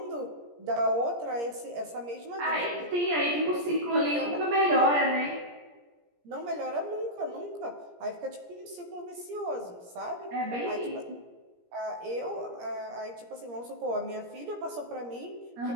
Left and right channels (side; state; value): left; late; 17 ms